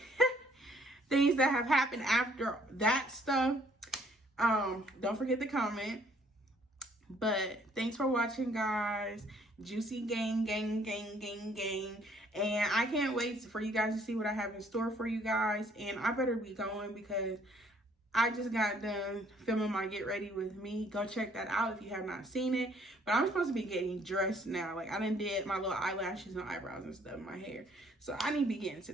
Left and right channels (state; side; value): normal; both; correlation 0.63